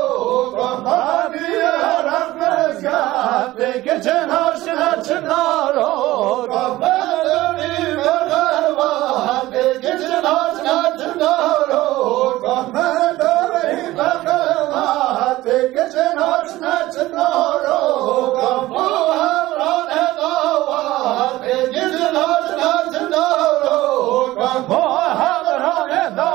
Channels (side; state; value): left; quieter; 17.1 dB